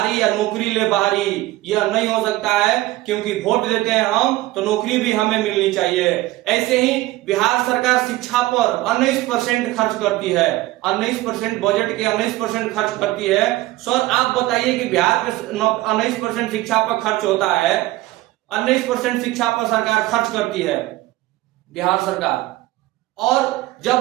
या नौकरी ले बाहरी, यह नहीं हो सकता है, क्योंकि वोट देते हैं हम तो नौकरी भी हमें मिलनी चाहिए। ऐसे ही बिहार सरकार शिक्षा पर 19% खर्च करती है, 19% बजट के 19% खर्च करती है। सर आप बताइए कि बिहार में 19% शिक्षा पर खर्च होता है, 19% शिक्षा पर सरकार खर्च करती है बिहार सरकार। और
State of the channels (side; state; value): left; quieter; 17.7 dB